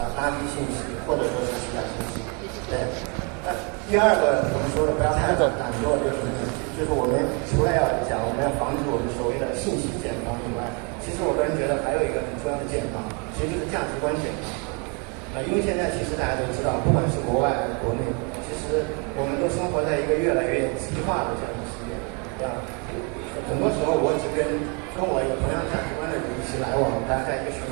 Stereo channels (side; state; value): left; quieter; 34.2 dB